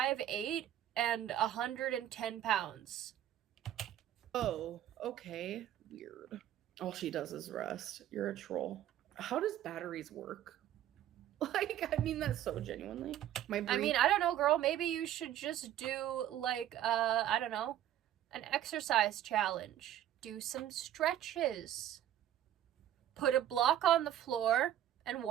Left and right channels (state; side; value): quieter; left; 11.8 dB